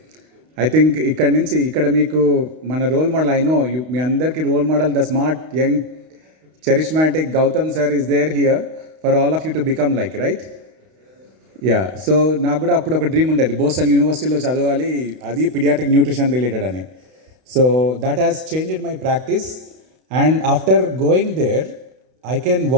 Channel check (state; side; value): late; left; 32 ms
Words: I think ఇక్కడ మీకు మన role model I know మీ అందరికీ role model the smart young charismatic Gautam sir is there here for all of you to become like, right? Yeah so నాకు కూడా అప్పుడు ఒక dream ఉండేది బోస్టన్ యూనివర్సిటీలో చదవాలి, అది పీడియాట్రిక్ న్యూట్రిషన్ రిలేటెడ్ అని. So that has changed my practice and after going there I can